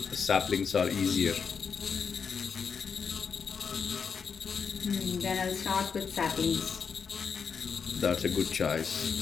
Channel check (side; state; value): right; quieter; 6.1 dB